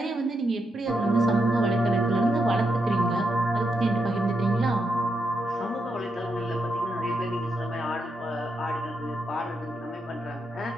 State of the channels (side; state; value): both; normal; correlation 0.82